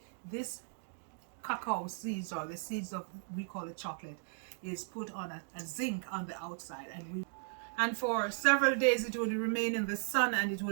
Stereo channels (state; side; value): silent; left; digital silence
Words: This cacao seeds, or the seeds of, we call it chocolate, is put on a zinc on the outside, and for several days it will remain in the sun and it